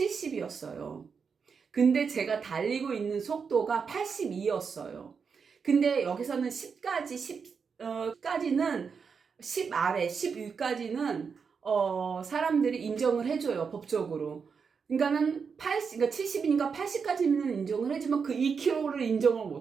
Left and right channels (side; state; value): left; quieter; 5.8 dB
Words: 근데 제가 달리고 있는 속도가 82였어요. 근데 여기서는 10까지, 10까지는 10 아래, 10 위까지는 사람들이 인정을 해줘요, 법적으로. 그러니까는 80, 그러니까 70이니까 80까지는 인정을 해주면 그 2km를 인정을